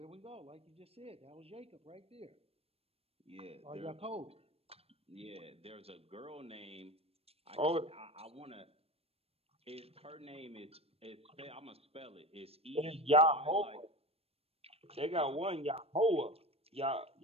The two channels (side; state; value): left; late; 0.28 ms